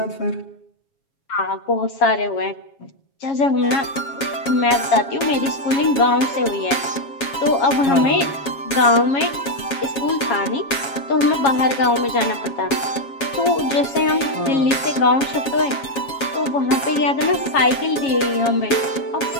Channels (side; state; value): right; late; 7.3 ms